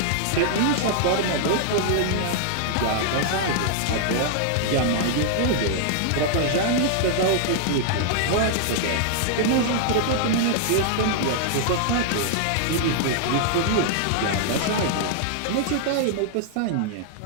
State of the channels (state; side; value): different; both; correlation -0.01